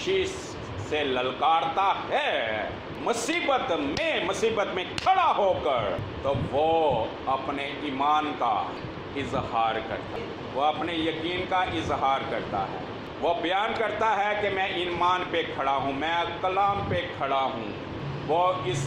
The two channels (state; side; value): identical; both; correlation 1.00